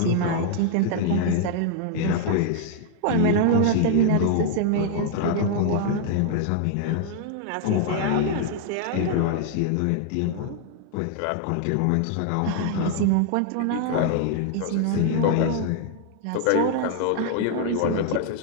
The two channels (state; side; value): different; both; correlation 0.00